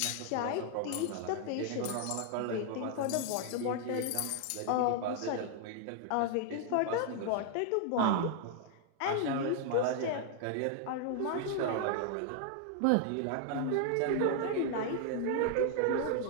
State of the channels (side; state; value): both; different; correlation 0.00